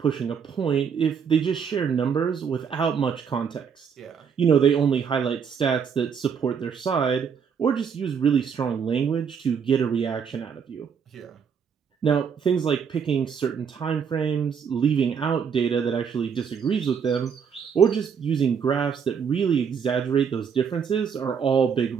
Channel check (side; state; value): left; quieter; 6.8 dB